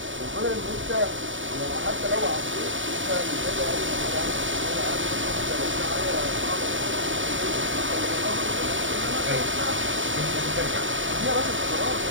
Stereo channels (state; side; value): late; left; 0.56 ms